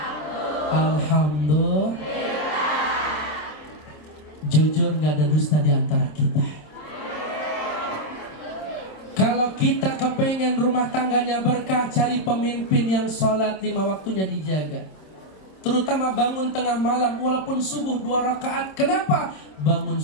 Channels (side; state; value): right; late; 26 ms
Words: Alhamdulillah. Jujur gak ada dusta di antara kita. Kalau kita kepengen rumah tangganya berkah, cari pemimpin yang sholat 5 waktunya dijaga. Terutama bangun tengah malam walaupun subuh 2 rakaat. Kenapa? Bangun